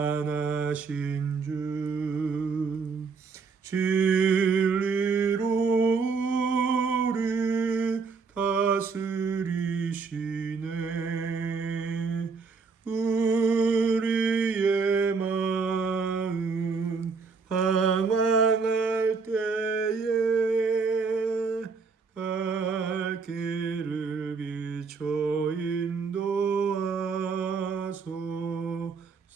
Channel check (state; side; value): quieter; left; 4.9 dB